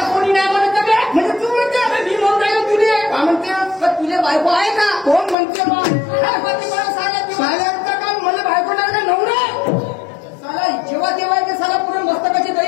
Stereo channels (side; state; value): right; drops out; at 5.4 s